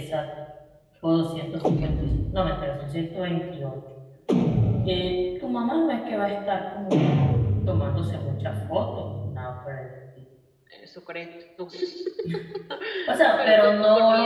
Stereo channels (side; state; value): both; identical; correlation 1.00